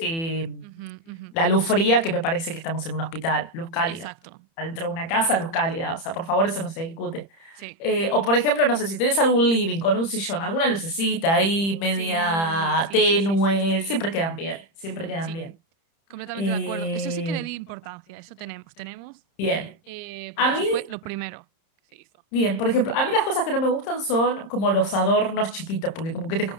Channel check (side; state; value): right; late; 30 ms